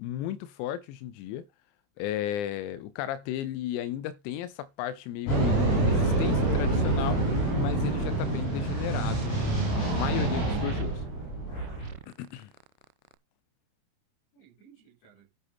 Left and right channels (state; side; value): late; right; 29 ms